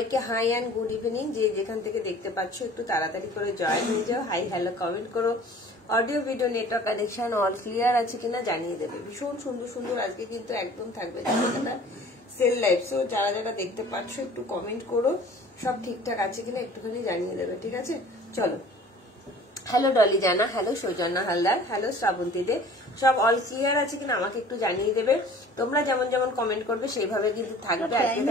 হাই এন্ড গুড ইভিনিং। যে যেখান থেকে দেখতে পাচ্ছ একটু তাড়াতাড়ি করে জয়েন হয়ে যাও, হাই হ্যালো কমেন্ট করো। Audio video network connection all clear আছে কিনা জানিয়ে দেবে। ভীষণ সুন্দর সুন্দর আজকে কিন্তু একদম থাকবে সেল লাইভ। সো যারা যারা দেখতে পাচ্ছ একটু কমেন্ট করো, সব ঠিকঠাক আছে কিনা একটুখানি জানিয়ে দেবে, ঠিক আছে? চলো, হ্যালো ডলি জানা, হ্যালো সৌজন্যা হালদার, হ্যালো শ্রাবন্তী দে, সব অল ক্লিয়ার আছে কিনা আমাকে একটু জানিয়ে দেবে। তোমরা যেমন যেমন কমেন্ট করবে সেইভাবে কিন্তু থাকবে। আজকে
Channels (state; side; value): normal; both; correlation 0.47